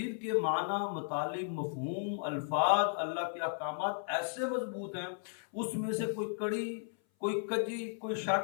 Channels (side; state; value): right; silent; 55 dB below the other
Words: کے معنی، مطالب، مفہوم، الفاظ، اللہ کے احکامات ایسے مضبوط ہیں، اس میں سے کوئی کڑی، کوئی کجی، کوئی